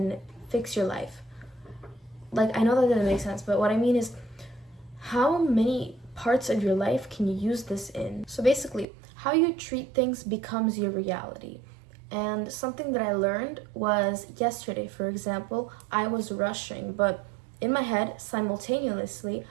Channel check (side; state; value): left; drops out; at 8.8 s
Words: fix your life. Like, I know that didn't make sense, but what I mean is, how many parts of your life can you use this in? So basically, how you treat things becomes your reality. And something that I learned was yesterday, for example, I was rushing, but in my head, simultaneously,